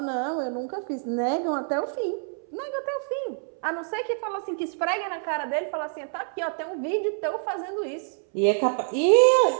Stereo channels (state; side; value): silent; left; 61 dB below the other